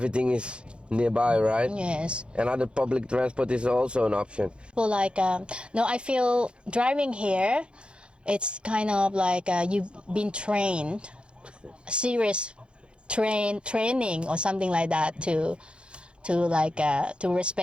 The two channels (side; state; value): left; late; 0.056 ms